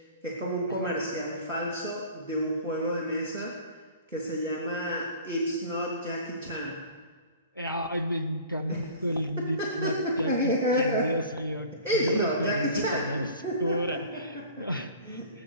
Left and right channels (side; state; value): both; inverted; correlation -0.44